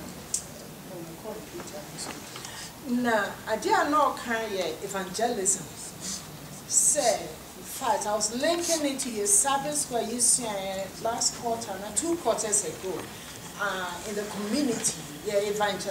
na ade a no kan ye evangelism say, in fact, I was linking it to your service where you said last quarter, 2 quarters ago, in the community, you're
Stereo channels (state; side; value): identical; both; correlation 1.00